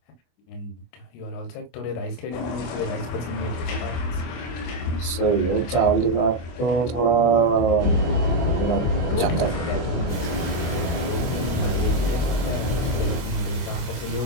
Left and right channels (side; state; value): right; late; 24 ms